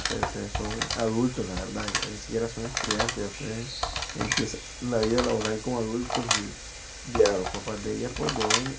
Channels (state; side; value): identical; both; correlation 1.00